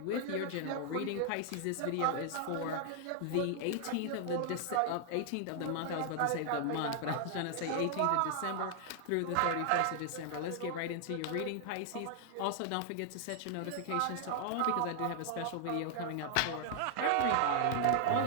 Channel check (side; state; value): both; different; correlation 0.00